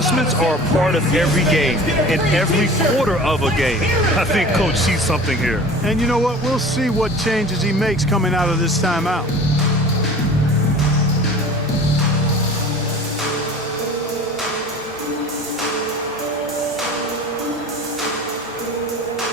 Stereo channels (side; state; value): both; normal; correlation 0.41